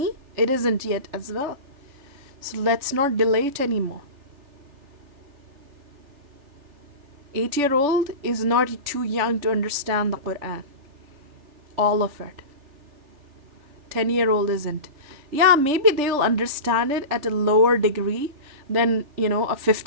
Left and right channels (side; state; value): left; late; 3.4 ms